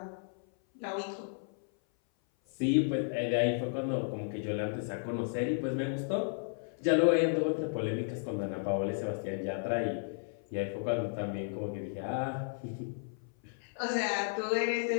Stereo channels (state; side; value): silent; right; 55 dB below the other